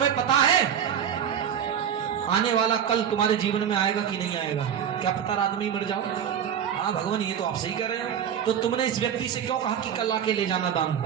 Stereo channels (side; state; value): left; quieter; 8.8 dB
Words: पता है आने वाला कल तुम्हारे जीवन में आएगा कि नहीं आएगा? क्या पता रात में ही मर जाओ। हाँ भगवान ये तो आप सही कह रहे हो। तो तुमने इस व्यक्ति से क्यों कहा कि कल आके ले जाना दान?